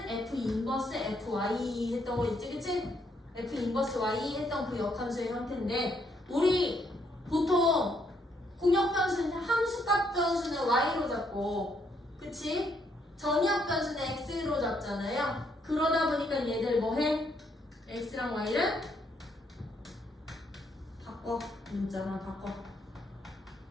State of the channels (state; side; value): normal; both; correlation 0.73